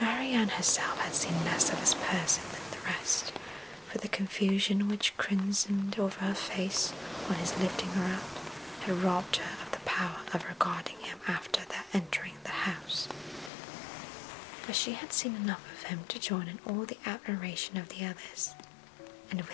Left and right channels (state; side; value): drops out; right; at 13.5 s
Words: herself had seen less of his person than the rest, for the confusion which crimsoned over her face on his lifting her up had robbed her of the power of regarding him after their entering the house. But she had seen enough of him to join in all the admiration of the others, and